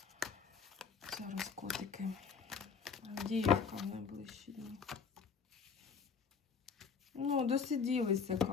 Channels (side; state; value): right; quieter; 5.8 dB